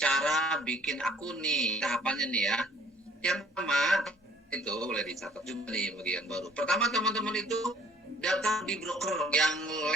bikin akun nih, tahapannya nih ya. Yang pertama itu boleh dicatat juga nih bagi yang baru. Pertama teman-teman itu daftar di broker yang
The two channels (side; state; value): both; normal; correlation 0.58